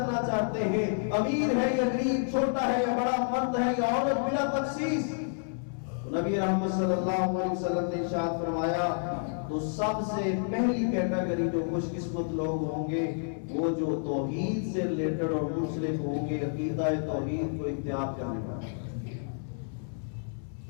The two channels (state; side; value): silent; right; 58 dB below the other